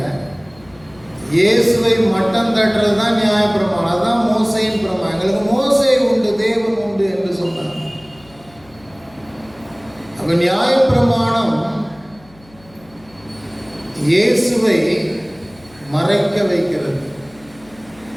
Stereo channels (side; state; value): left; noise; hum, 27 dB below the sound